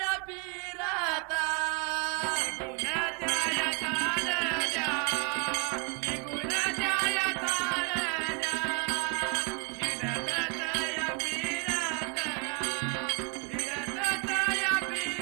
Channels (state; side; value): quieter; left; 35.1 dB